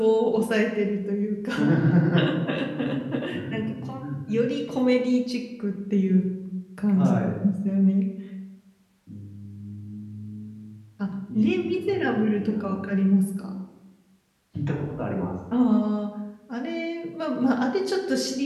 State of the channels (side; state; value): both; identical; correlation 1.00